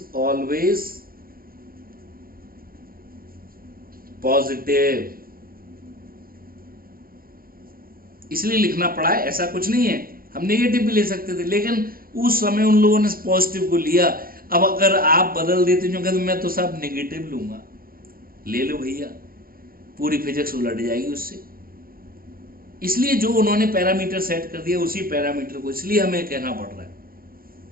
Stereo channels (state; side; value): late; left; 0.42 ms